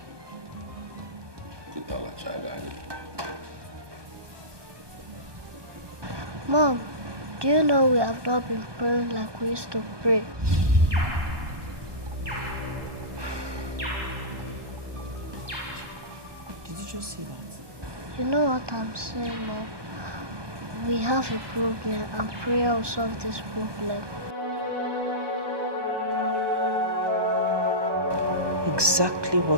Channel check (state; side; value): late; left; 1.2 ms